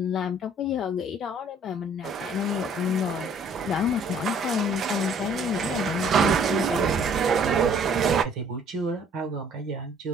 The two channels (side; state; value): both; normal; correlation 0.58